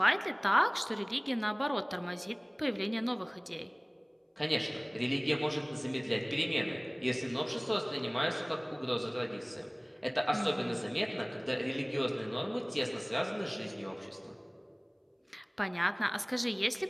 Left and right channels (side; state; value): both; identical; correlation 1.00